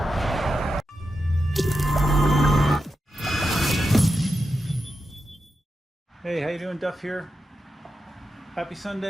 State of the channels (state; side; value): normal; both; correlation 0.88